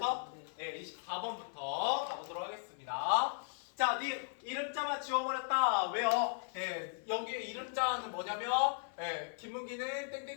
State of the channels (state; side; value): silent; right; 53 dB below the other